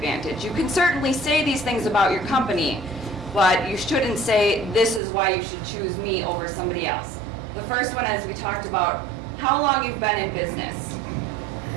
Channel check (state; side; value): drops out; left; at 5.0 s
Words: You can certainly say these things about your company, but you shouldn't say, this is why you should choose me over somebody else. The first one, as we talked about, how long you've been in business.